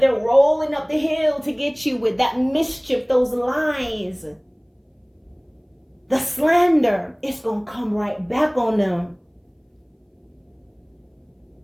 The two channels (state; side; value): identical; both; correlation 1.00